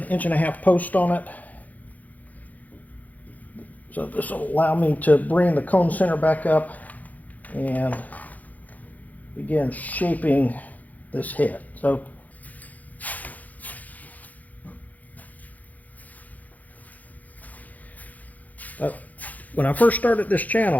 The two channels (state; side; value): late; right; 0.079 ms